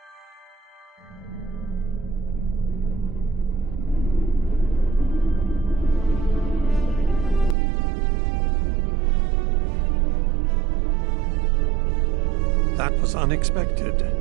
That was unexpected,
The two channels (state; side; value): drops out; left; at 7.6 s